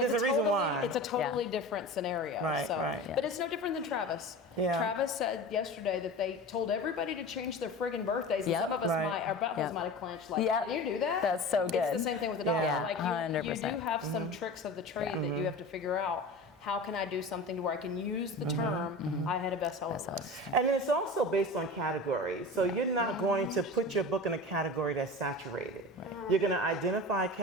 there's it's a reason totally, why. It's a totally different scenario. Right, so, right. Yeah. But it's no different than Travis. Yeah. Travis said yesterday that they told everybody to change their friggin' birthdays. And Yep. some of us Right. our buttholes Yep. might have clenched. Like, Yep. can you do that? That's so It's good. the same thing with the dollar. Yeah, Like you 100%. do have some tricks of the trade that you have to figure out. How can I do something to where I can use the term, I had a bestseller list. And it's also based on category. So you're not going to put your book in a category that's saturated. You're going to identify a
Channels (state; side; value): normal; both; correlation 0.33